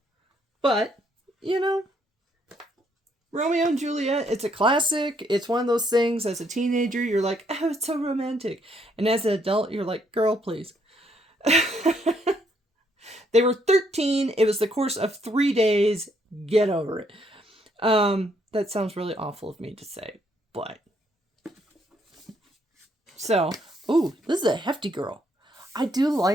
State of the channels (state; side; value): normal; both; correlation 0.71